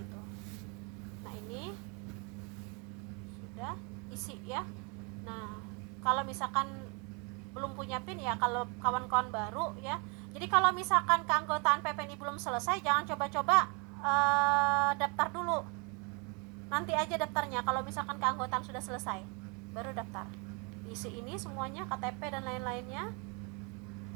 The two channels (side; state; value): left; quieter; 32.6 dB